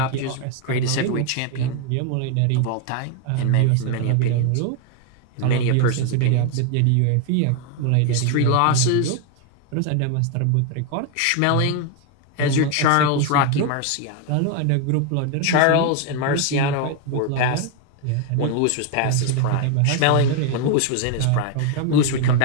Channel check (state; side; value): different; both; correlation 0.01